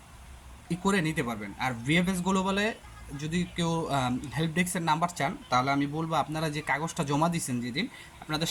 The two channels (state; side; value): identical; both; correlation 1.00